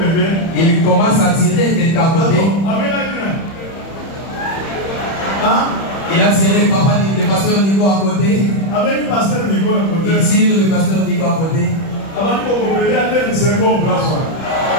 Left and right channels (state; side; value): late; right; 31 ms